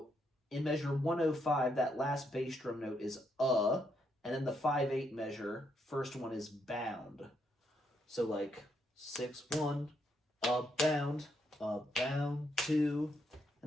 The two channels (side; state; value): both; normal; correlation 0.77